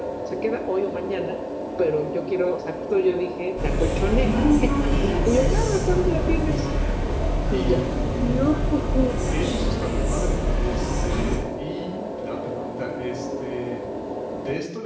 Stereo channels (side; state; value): both; identical; correlation 1.00